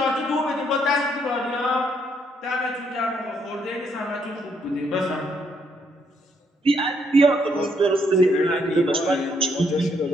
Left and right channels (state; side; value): normal; both; correlation 0.72